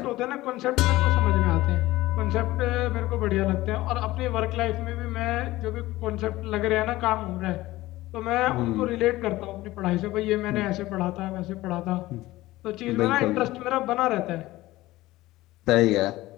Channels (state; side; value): quieter; right; 17.7 dB